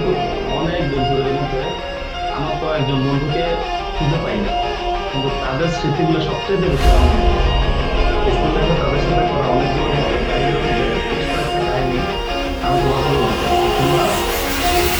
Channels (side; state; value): both; identical; correlation 1.00